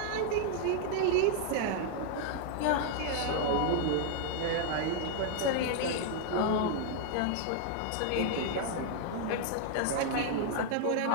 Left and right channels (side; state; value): both; different; correlation -0.01